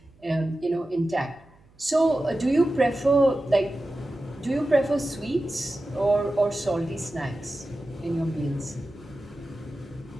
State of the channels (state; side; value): noise; right; hum, 29 dB below the sound